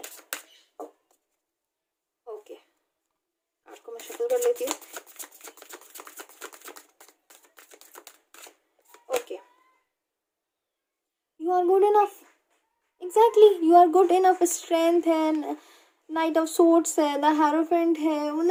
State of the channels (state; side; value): identical; both; correlation 1.00